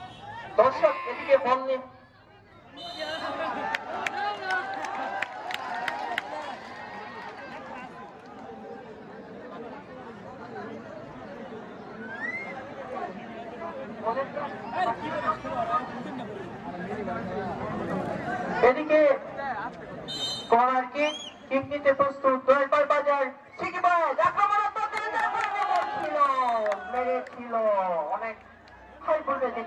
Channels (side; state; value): both; identical; correlation 1.00